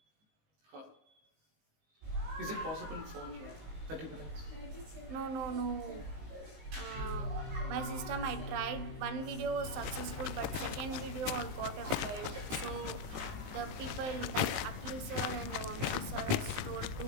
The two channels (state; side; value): late; left; 19 ms